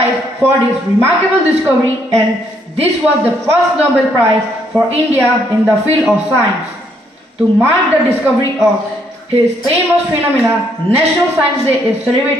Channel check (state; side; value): normal; both; correlation 0.71